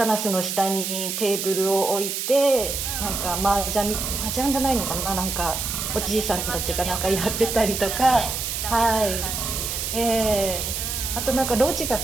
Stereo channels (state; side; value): noise; right; hiss, 3 dB below the sound